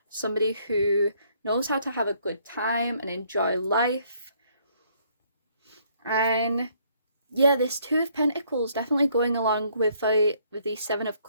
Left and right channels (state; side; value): inverted; both; correlation -0.66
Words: Somebody who knows how to have a good time and enjoy life. And yeah, this 2 of Pentacles definitely going along with the 7 of